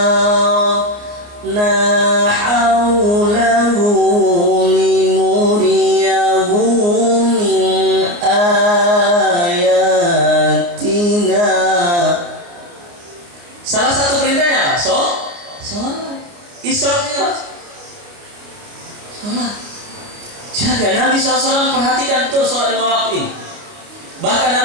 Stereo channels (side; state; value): left; late; 29 ms